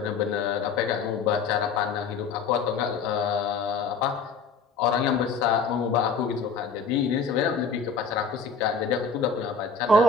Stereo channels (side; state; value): right; quieter; 5.1 dB